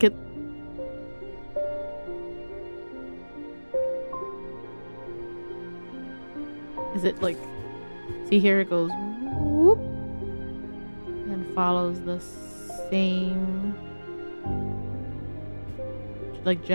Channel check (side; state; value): both; inverted; correlation -1.00